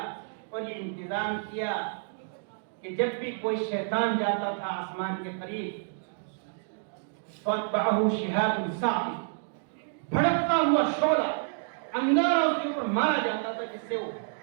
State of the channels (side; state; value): left; silent; digital silence